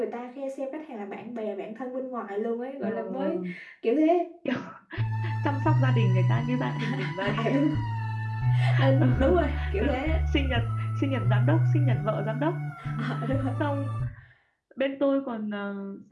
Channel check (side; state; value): both; identical; correlation 1.00